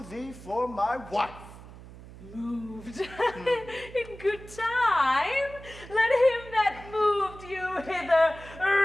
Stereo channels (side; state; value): right; noise; hum, 17 dB below the sound